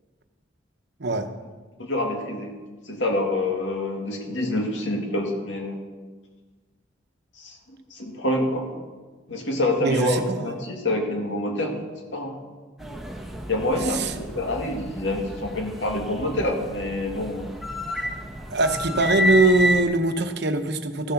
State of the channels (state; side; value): normal; both; correlation 0.32